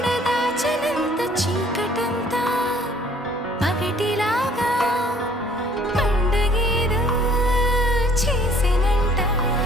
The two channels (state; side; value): normal; both; correlation 0.58